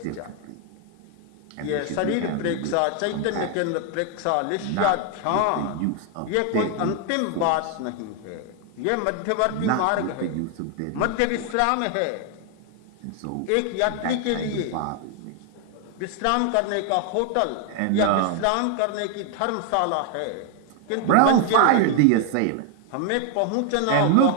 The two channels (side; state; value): both; different; correlation 0.00